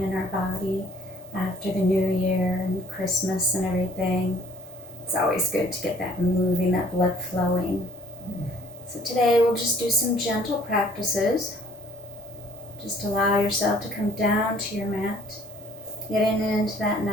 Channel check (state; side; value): normal; both; correlation 0.56